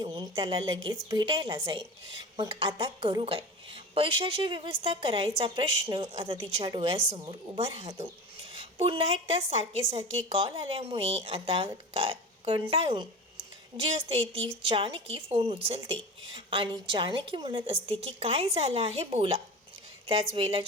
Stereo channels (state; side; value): normal; both; correlation 0.31